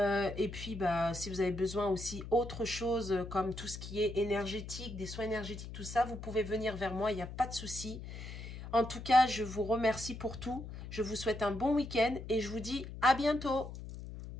et puis, bah, si vous avez besoin aussi autre chose, comme tout ce qui est énergétique, des soins énergétiques, tout ça, vous pouvez venir vers moi, il n'y a pas de souci. En tout cas, je vous remercie pour tout. Je vous souhaite un bon week-end et je vous dis à bientôt.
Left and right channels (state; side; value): noise; left; hum, 10 dB below the sound